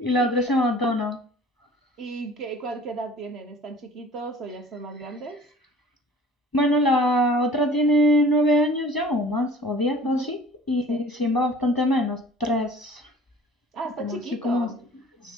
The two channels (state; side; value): normal; both; correlation 0.47